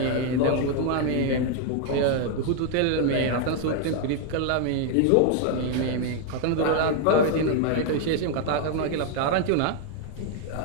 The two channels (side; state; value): both; different; correlation 0.00